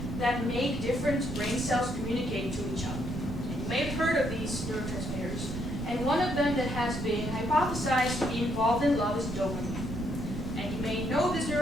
that make different brain cells communicate to each other. And you may have heard of these neurotransmitters. And one of them that has been hypothesized to be involved in love is dopamine. And you may know this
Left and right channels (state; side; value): noise; right; rumble, 8 dB below the sound